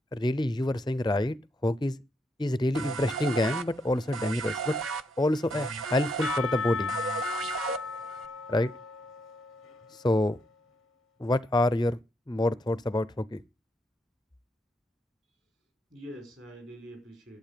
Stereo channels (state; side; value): normal; both; correlation 0.77